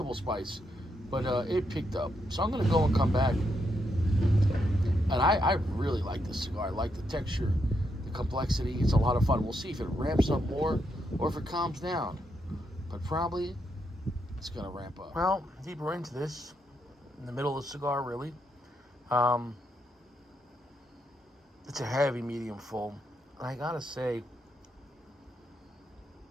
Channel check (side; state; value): both; normal; correlation 0.80